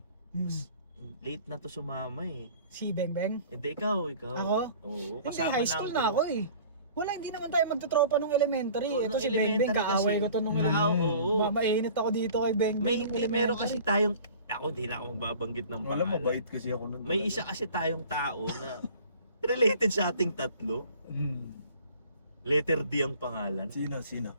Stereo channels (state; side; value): inverted; both; correlation -0.47